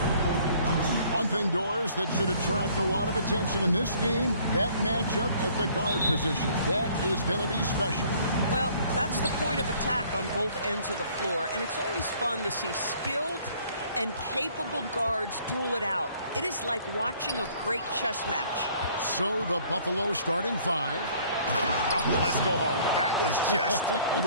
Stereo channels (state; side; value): inverted; both; correlation -0.58